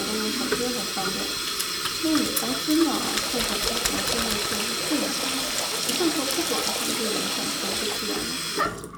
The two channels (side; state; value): both; identical; correlation 1.00